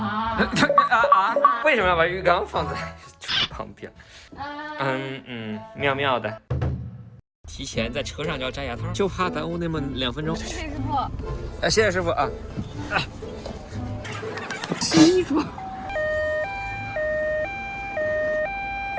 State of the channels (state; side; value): identical; both; correlation 1.00